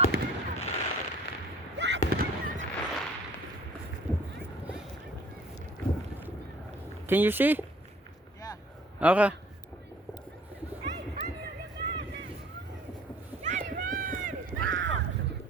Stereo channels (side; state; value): both; normal; correlation 0.53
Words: Can you see? Yeah. Okay.